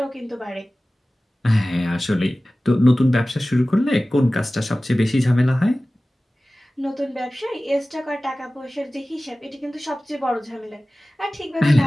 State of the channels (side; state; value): both; normal; correlation 0.97